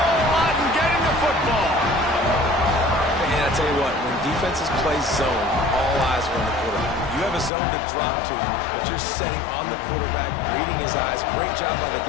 lot in getting the football. And I tell you what, when defenses play zone, all eyes are on the quarterback. You have a zone to drop to, but you're setting on the quarterback, reading his eyes. Great job by the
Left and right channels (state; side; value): drops out; right; at 7.5 s